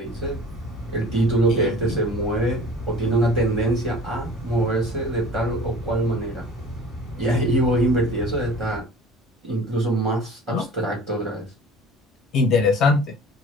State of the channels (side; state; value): both; normal; correlation 0.44